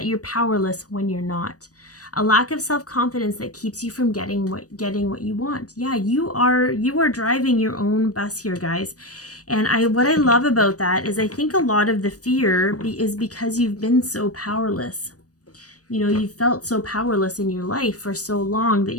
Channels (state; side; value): late; right; 0.67 ms